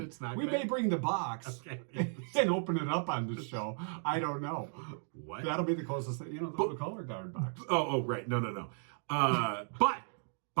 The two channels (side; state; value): left; silent; 54 dB below the other